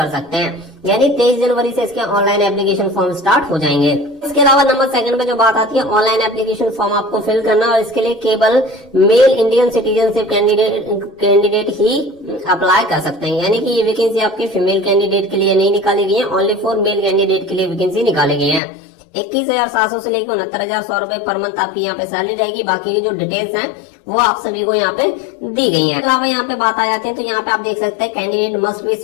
सकते हैं। यानी 23 जनवरी से इसके ऑनलाइन एप्लीकेशन फॉर्म स्टार्ट हो जाएंगे। इसके अलावा नंबर सेकंड पे जो बात आती है, ऑनलाइन एप्लीकेशन फॉर्म आपको फिल करना, और इसके लिए केवल मेल इंडियन सिटीजनशिप कैंडिडेट ही अप्लाई कर सकते हैं। यानी कि ये वैकेंसी आपके फीमेल कैंडिडेट के लिए नहीं निकाली गई है, ओनली फॉर मेल कैंडिडेट के लिए वैकेंसी निकाली गई है। 21,700 से लेकर 69,100 रुपए पर मंथ आपकी यहाँ पे सैलरी रहेगी। बाकी की जो डिटेल्स हैं वो आप सभी को यहाँ पे दी गई है। अलावा यहाँ पे बात आ जाती है तो यहाँ पे आप देख सकते हैं candidate must be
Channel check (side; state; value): right; drops out; at 18.6 s